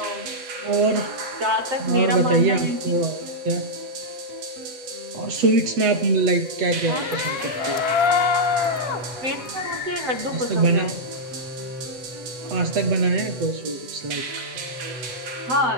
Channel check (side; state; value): left; late; 7.8 ms